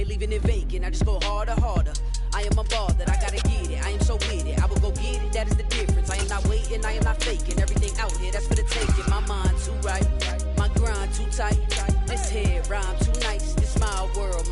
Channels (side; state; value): both; identical; correlation 1.00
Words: leaving it vacant. I just go harder, harder. I am a ball that I gotta get it. I am so with it. I will go get it. That is the difference. I am not waiting. I am not faking. Everything out here, that's for the taking. My mind too right. My grind too tight. This head rhyme too nice. This my world,